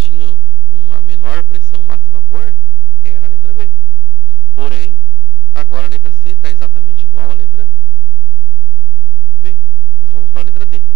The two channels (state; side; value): normal; both; correlation 0.50